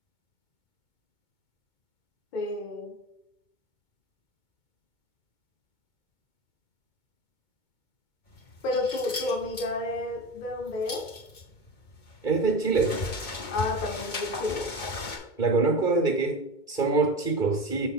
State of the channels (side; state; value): right; late; 2.2 ms